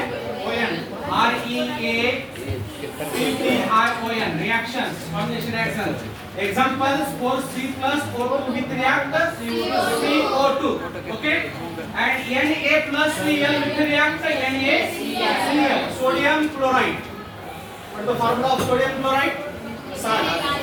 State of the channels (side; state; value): both; identical; correlation 1.00